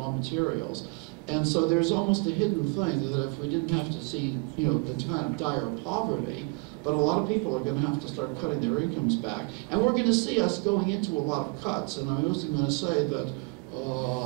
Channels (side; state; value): left; quieter; 29.7 dB